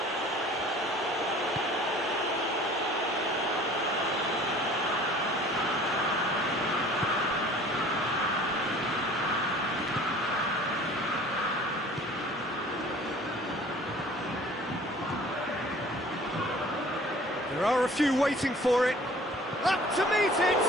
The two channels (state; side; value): normal; both; correlation 0.49